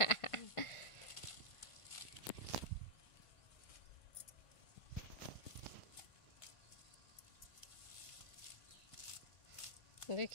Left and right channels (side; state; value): right; late; 1.5 ms